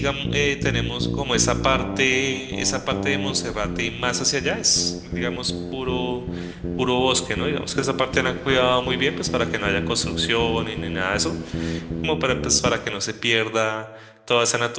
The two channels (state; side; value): identical; both; correlation 1.00